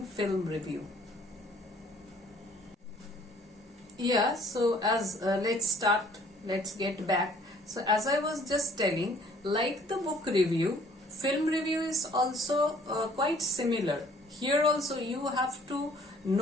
film review. Yeah, so let's get back. So as I was just telling, like the book review, film review is also quite similar. Here also you have to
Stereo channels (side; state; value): both; normal; correlation 0.57